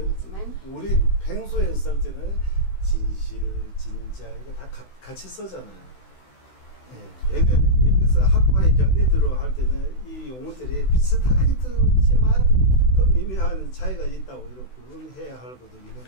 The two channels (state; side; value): late; right; 16 ms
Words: 우리 평소에 쓸 때는 진실, 진짜 이거 다 같이 쓰잖아요. 예, 여기서 학과의 견디들어 할 때는 이 용어들이 비슷하게 듣지만 또 미묘한 차이가 있다고 이렇게 구분해야 할 것도 있는